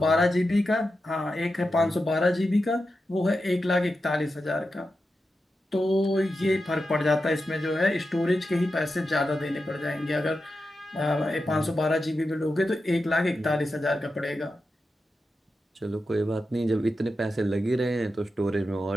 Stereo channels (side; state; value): both; normal; correlation 0.90